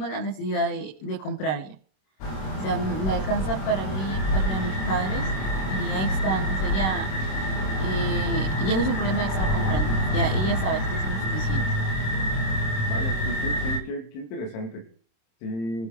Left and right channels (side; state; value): right; late; 26 ms